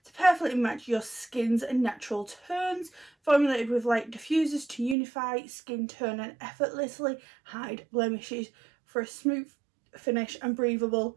to perfectly match your skin's natural tones, formulated with light diffusers to unify skin tone and effortlessly hide blemishes for a smooth finish and breathable.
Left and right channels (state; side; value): drops out; left; at 5.0 s